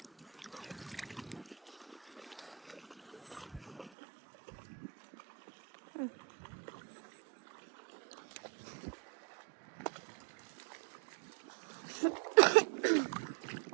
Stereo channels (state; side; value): drops out; left; at 3.9 s